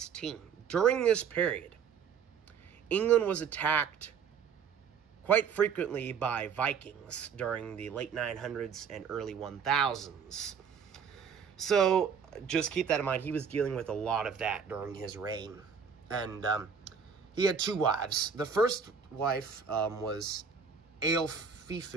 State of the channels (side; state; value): left; quieter; 6.6 dB